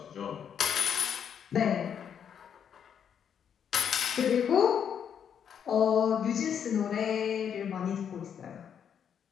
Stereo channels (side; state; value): right; quieter; 8.1 dB